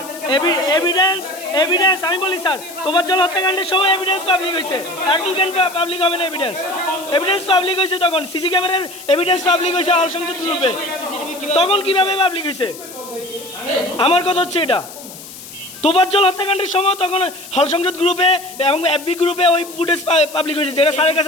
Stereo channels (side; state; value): left; noise; hiss, 15 dB below the sound